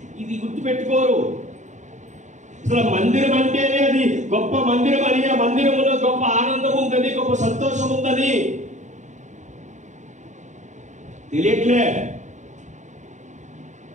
ఇది గుర్తుపెట్టుకోరు. అసలు మందిరం అంటేనే అది గొప్ప మందిరం అని, ఆ మందిరంలో గొప్ప ఆనందం ఉందని, గొప్ప సంతోషం ఉందని తెలియట్లేదు.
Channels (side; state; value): left; late; 0.35 ms